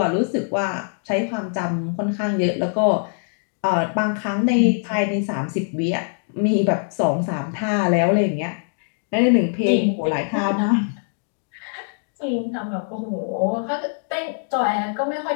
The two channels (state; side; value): silent; right; digital silence